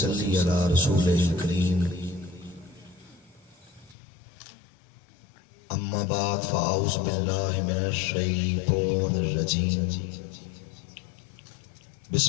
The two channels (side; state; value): right; drops out; at 4.0 s